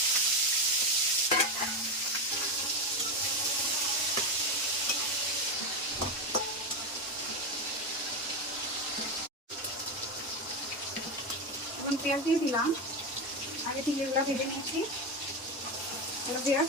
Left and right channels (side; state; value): both; normal; correlation 0.13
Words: এখন পেঁয়াজ দিয়ে দিলাম, আগে থেকে এগুলো ভেজে নিচ্ছি। হ্যালো